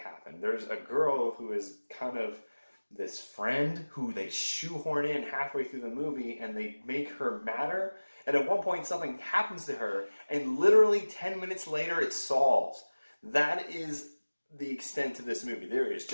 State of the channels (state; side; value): inverted; both; correlation -1.00